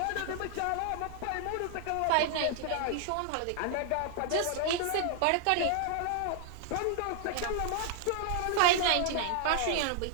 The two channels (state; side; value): different; both; correlation 0.00